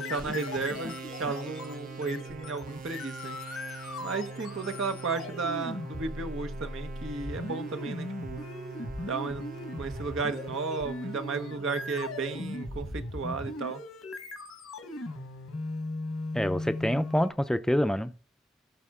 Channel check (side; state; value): both; normal; correlation 0.61